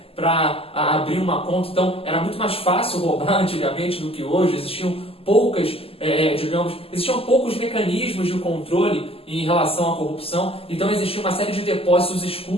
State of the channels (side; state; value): right; late; 0.28 ms